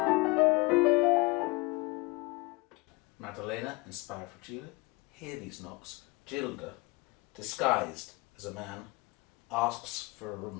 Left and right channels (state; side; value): quieter; right; 24.3 dB